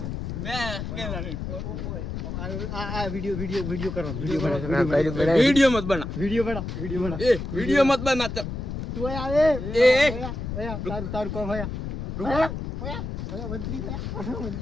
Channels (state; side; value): noise; left; rumble, 5 dB below the sound